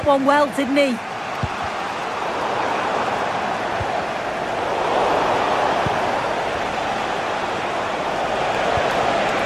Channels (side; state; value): both; identical; correlation 1.00